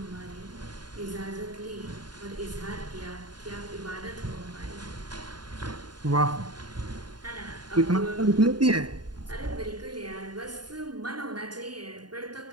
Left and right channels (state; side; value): late; left; 0.70 ms